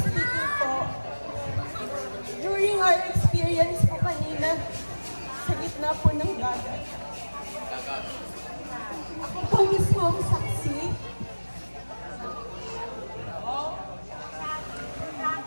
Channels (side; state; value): both; inverted; correlation -1.00